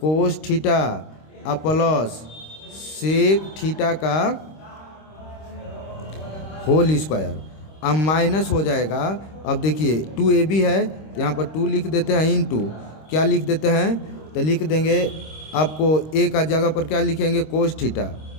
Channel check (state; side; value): late; right; 26 ms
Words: थीटा और प्लस सेक थीटा का होल स्क्वायर, अब माइनस हो जाएगा। अब देखिए 2ab है, तो यहाँ पर 2 लिख देते हैं, इनटू क्या लिख देते हैं? तो लिख देंगे आपको ए का जगह पर क्या लिखेंगे? कोस